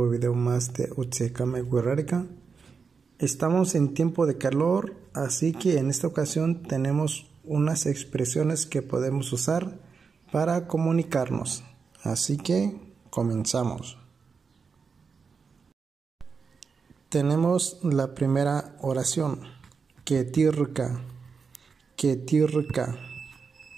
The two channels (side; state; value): left; quieter; 5.4 dB